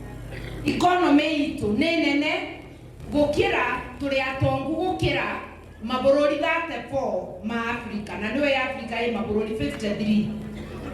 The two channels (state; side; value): identical; both; correlation 1.00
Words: economy itu ni nene gukira turi atongu gukira mabururi 34 ma Africa na niwe Africa ye mabururi 53